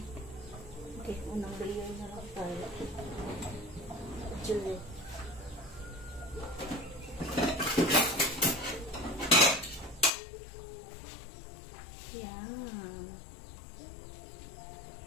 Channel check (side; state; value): right; drops out; at 10.1 s